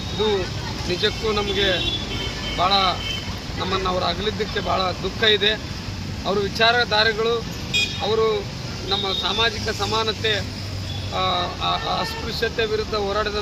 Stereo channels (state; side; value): identical; both; correlation 1.00